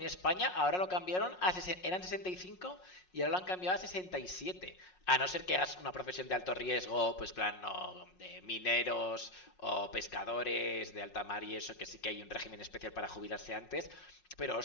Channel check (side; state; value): right; late; 5.5 ms